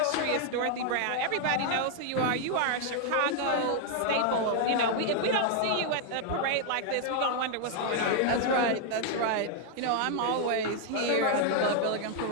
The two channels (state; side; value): different; both; correlation 0.00